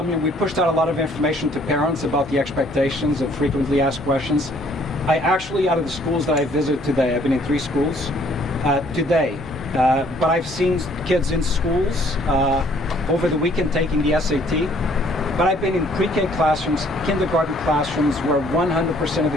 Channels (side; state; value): both; normal; correlation 0.61